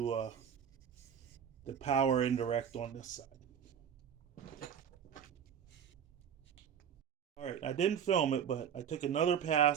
the power indirect on this side. All right, I didn't film it, but I took another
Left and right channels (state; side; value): quieter; left; 8.3 dB